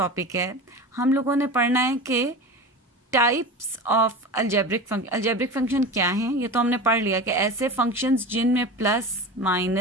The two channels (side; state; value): both; normal; correlation 0.30